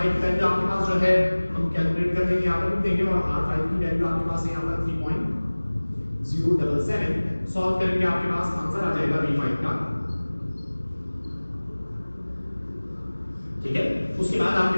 की वैल्यू आपके पास जो है हम कैलकुलेट कर लेंगे, यहाँ पर लिख देंगे, और R5 की वैल्यू आपके पास है यहाँ पर 3.077। सॉल्व करेंगे आपके पास आंसर आ जाएगा V5 का, ठीक है। उसके बाद आपके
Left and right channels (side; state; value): both; inverted; correlation -1.00